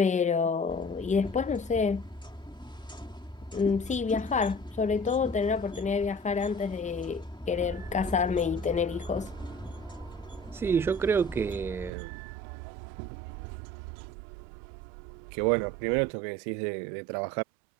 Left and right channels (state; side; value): drops out; left; at 11.9 s